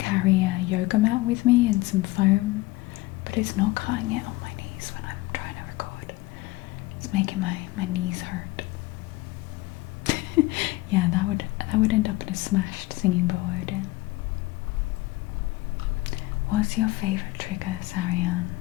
a yoga mat with me and some foam, but it's not cutting it on my knees when I'm trying to record. It's making my knees hurt. Yeah, that would end up in a smashed singing bowl, Odin. What's your favourite trigger, Sarian?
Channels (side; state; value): right; quieter; 20.2 dB